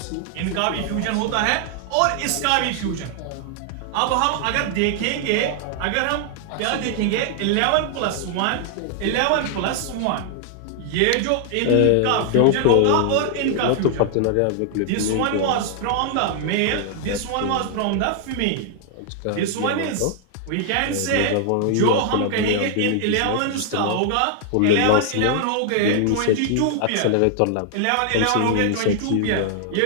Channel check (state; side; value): different; both; correlation 0.00